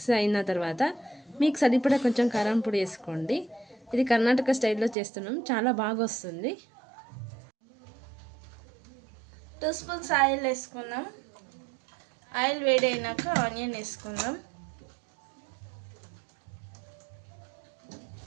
మీకు సరిపడా కొంచెం కారం పొడి వేసుకోండి. ఇది కర్ణాటక స్టైల్లో చేస్తున్నాం, చాలా బాగా వస్తుంది. 2 స్పూన్స్ ఆయిల్ వేసుకుందాం. ఆయిల్ వేడైనాక ఆనియన్ వేసుకుందాం.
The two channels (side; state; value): left; drops out; at 5.0 s